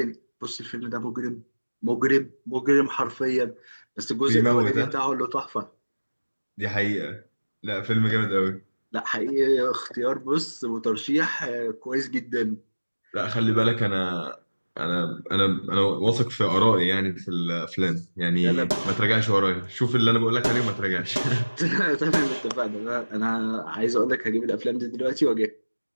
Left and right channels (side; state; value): both; inverted; correlation -1.00